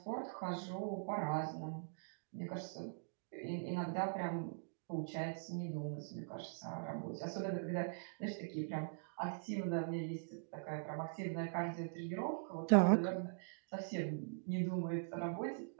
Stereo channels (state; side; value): silent; left; digital silence